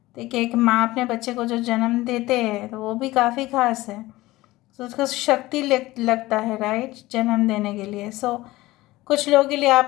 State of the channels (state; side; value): quieter; right; 18.4 dB